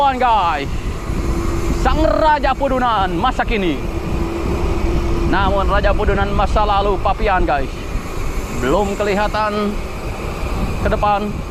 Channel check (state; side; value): identical; both; correlation 1.00